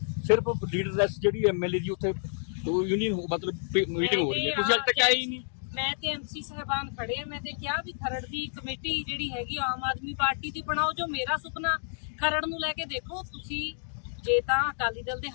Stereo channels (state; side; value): silent; right; digital silence